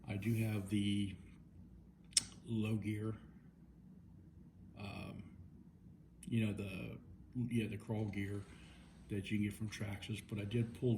I do have the low gear, the crawl gear that you can get from Traxxas, but I did pull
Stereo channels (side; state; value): both; identical; correlation 1.00